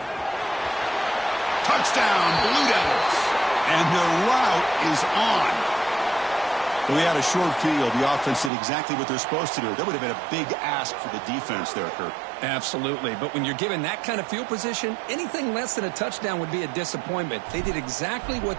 Touchdown, Blue Devils. And the route is on. We had a short field. The offense did exactly what they're supposed to do. That would have been a big ask for the defense there, Kurt. Absolutely. But when you're given that kind of field position, anything less than a touchdown would be a disappointment. They did exactly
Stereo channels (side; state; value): left; drops out; at 8.5 s